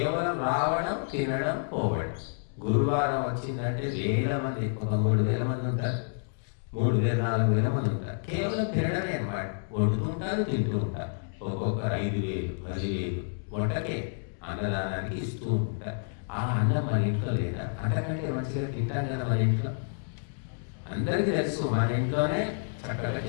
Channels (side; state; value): right; silent; digital silence